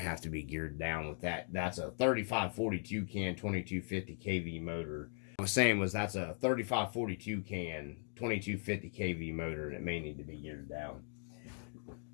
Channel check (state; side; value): silent; right; 52 dB below the other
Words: have to be geared down with that. That's a 3542 can 2250 kV motor. I was saying that's a 3542 can 2250 kV motor, and it may need to be geared down.